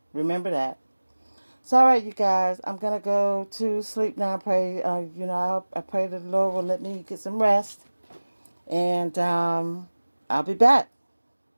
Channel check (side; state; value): both; inverted; correlation -1.00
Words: Remember that. So, all right, you guys, I'm going to go to sleep now. I pray, I pray that the Lord will let me get some rest. And I'll be back.